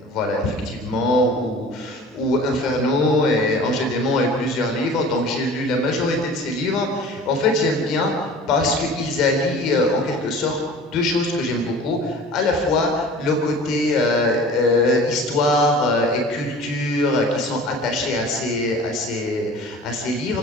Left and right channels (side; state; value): both; normal; correlation 0.42